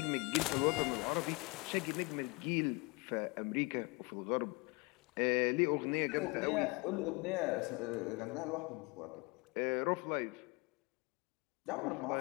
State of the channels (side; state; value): right; quieter; 27.7 dB